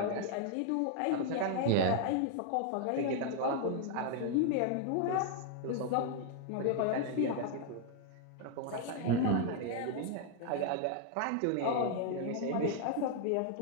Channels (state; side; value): different; both; correlation 0.00